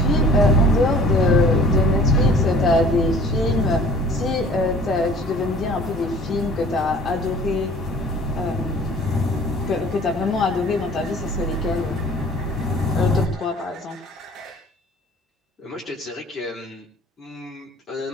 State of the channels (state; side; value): normal; both; correlation 0.49